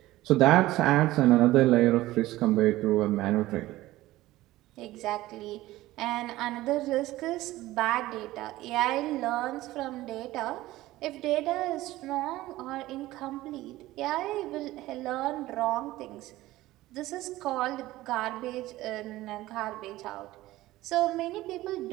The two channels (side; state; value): left; quieter; 16.9 dB